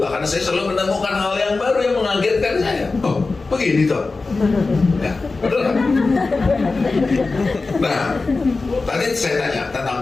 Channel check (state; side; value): quieter; right; 3.8 dB